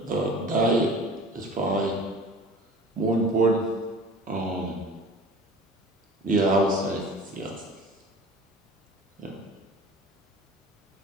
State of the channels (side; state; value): both; normal; correlation 0.41